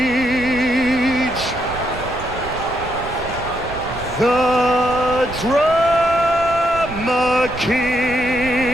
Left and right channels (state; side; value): noise; right; rumble, 12 dB below the sound